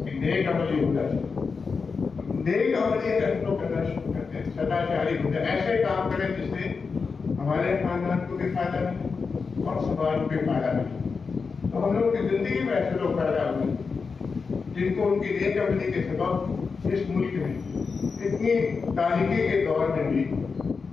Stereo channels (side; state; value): right; quieter; 5.0 dB